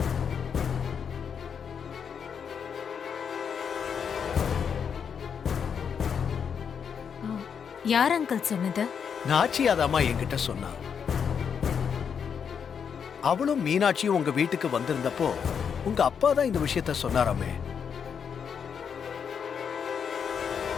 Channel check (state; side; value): quieter; right; 7.1 dB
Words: யார் அங்கிள் சொன்னது? நாச்சியாதாமா என்கிட்ட சொன்னா. அவளும் மீனாட்சியும் உங்க வீட்டுக்கு வந்திருந்தப்போ உங்க அப்பா தான் இந்த விஷயத்த சொன்னாராமே.